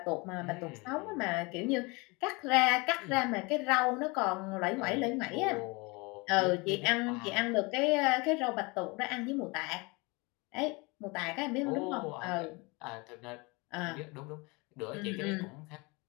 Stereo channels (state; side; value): quieter; right; 27.0 dB